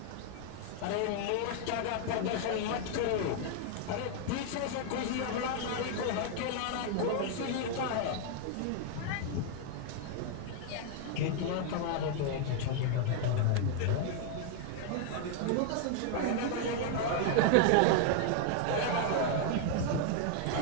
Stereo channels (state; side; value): different; both; correlation 0.00